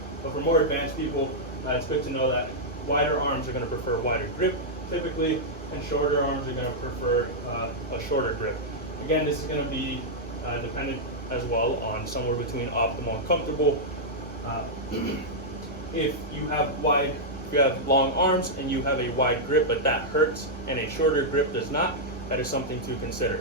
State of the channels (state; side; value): normal; both; correlation -0.07